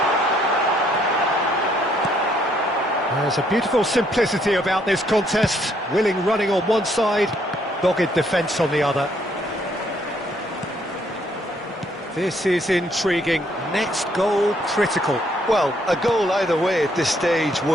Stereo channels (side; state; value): both; normal; correlation 0.69